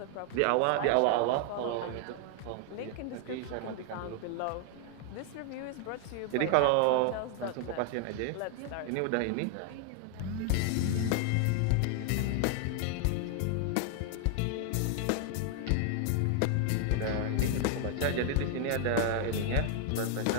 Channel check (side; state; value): both; different; correlation 0.00